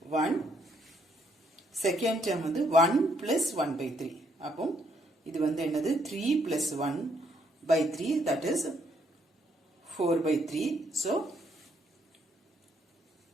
1. Second term வந்து 1 plus 1 by 3. அப்போ இது வந்து என்னது 3 plus 1 by 3, that is 4 by 3. So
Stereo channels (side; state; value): both; normal; correlation 0.71